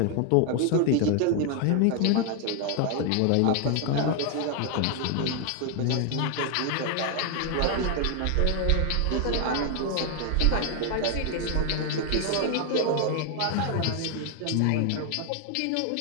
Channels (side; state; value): both; different; correlation 0.00